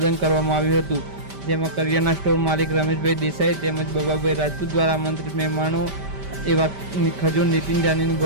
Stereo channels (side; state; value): left; late; 5.1 ms